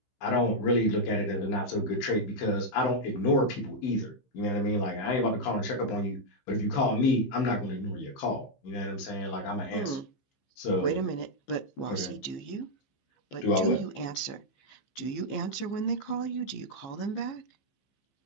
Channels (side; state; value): right; late; 15 ms